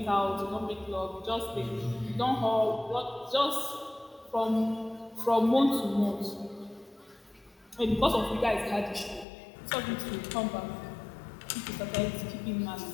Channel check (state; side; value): drops out; right; at 9.2 s